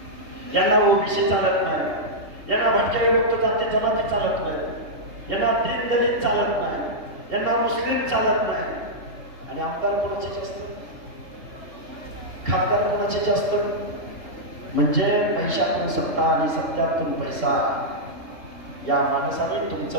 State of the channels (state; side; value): late; left; 2.8 ms